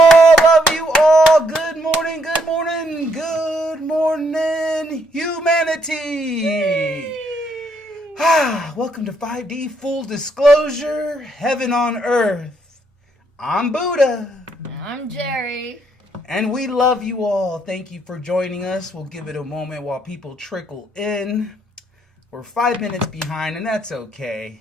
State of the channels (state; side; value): normal; both; correlation 0.72